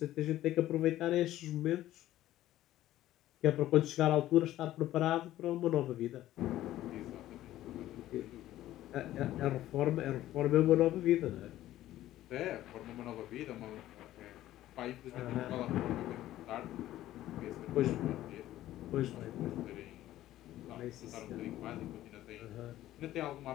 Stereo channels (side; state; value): right; quieter; 14.1 dB